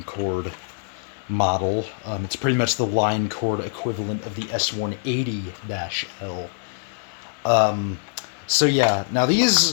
cord model. It's pretty much the line cord equivalent of the S-180-L. So yeah, now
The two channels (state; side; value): silent; right; 56 dB below the other